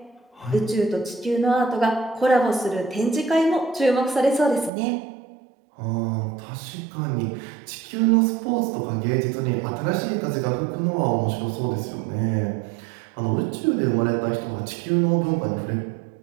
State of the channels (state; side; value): drops out; left; at 4.7 s